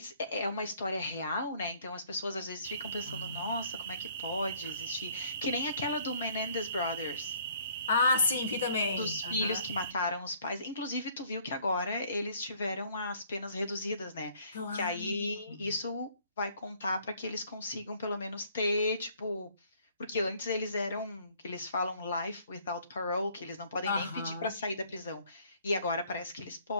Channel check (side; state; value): both; inverted; correlation -0.60